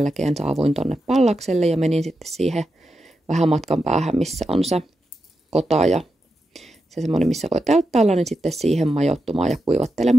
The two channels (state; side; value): normal; both; correlation 0.87